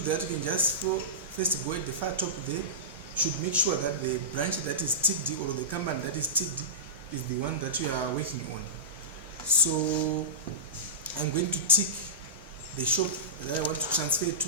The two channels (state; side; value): normal; both; correlation -0.18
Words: that, you can just first go at the far top there. You should make sure that the branch that is ticked or the company that is ticked is the one that you are working on. So I'm going to tick the shop that I want to transfer